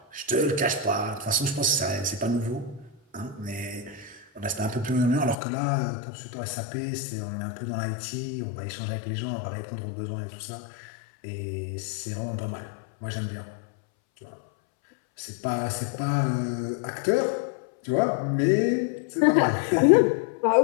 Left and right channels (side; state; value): right; drops out; at 5.4 s